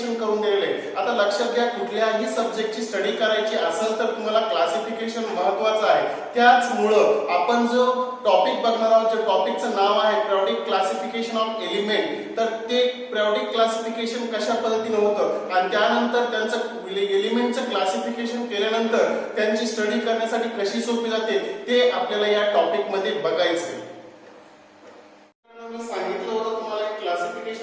करून दिलेले आहे। आता लक्षात घ्या, कुठल्याही सब्जेक्टची स्टडी करायची असेल तर तुम्हाला क्लासिफिकेशन महत्त्वाचं आहे। त्याचमुळं आपण जो टॉपिक बघणार आहोत, जे टॉपिकचं नाव आहे पिरियोडिक क्लासिफिकेशन ऑफ एलिमेंट, तर ते पिरियोडिक क्लासिफिकेशन कशा पद्धतीने होतं आणि त्यानंतर त्यांचं एलिमेंटचं क्लासिफिकेशन केल्यानंतर त्यांची स्टडी करण्यासाठी कशी सोपी जाते ते आपल्याला या टॉपिक मध्ये बघायचं आहे। मी सांगितलं होतं तुम्हाला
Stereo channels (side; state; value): both; identical; correlation 1.00